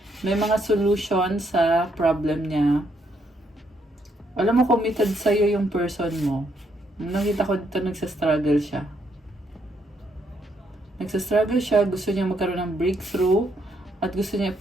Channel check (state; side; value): normal; both; correlation 0.74